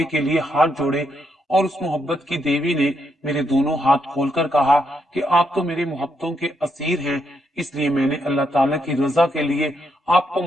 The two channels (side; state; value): both; normal; correlation 0.78